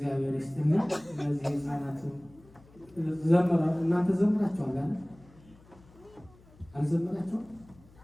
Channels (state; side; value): noise; left; hum, 25 dB below the sound